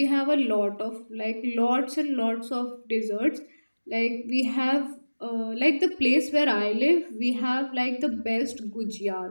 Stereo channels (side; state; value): both; inverted; correlation -1.00